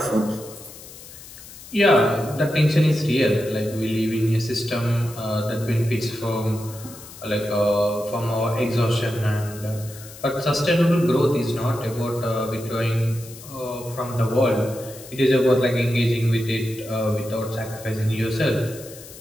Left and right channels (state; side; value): noise; left; hiss, 17 dB below the sound